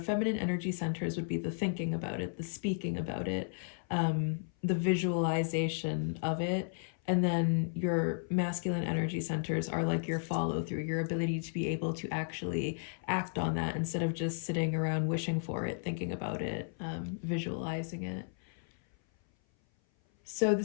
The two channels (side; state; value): right; silent; 55 dB below the other